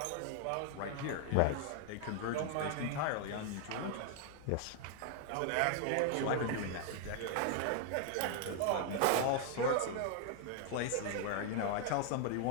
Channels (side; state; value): both; different; correlation 0.00